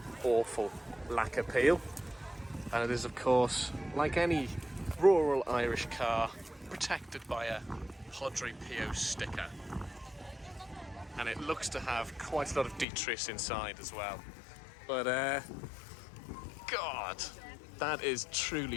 awful lack appeal. And it is, of course, like any rural Irish car, protected by a Padre Pio sticker. And it looks to have quite a lot of detritus inside as well. But, God, that is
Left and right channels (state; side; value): drops out; right; at 12.9 s